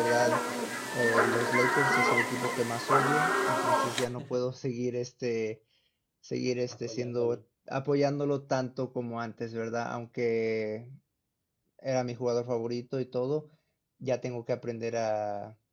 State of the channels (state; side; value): identical; both; correlation 1.00